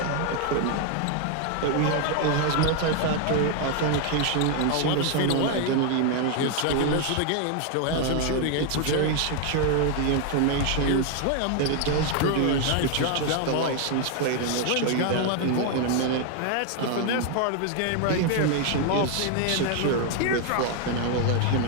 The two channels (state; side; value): different; both; correlation 0.00